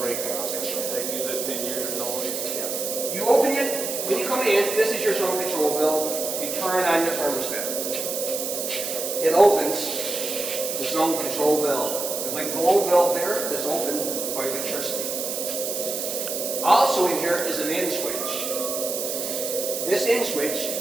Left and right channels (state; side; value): noise; right; hiss, 3 dB below the sound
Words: and all this kind of stuff. They use it 10 years or no. Yeah. You open it, when you come in, this is your zone control valve. You turn on your thermostat. It opens the zone control valve. There's like a globe valve there that's open by electricity. Also in here is an in switch. This in switch